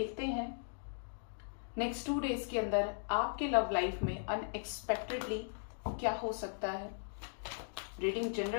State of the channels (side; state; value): right; silent; digital silence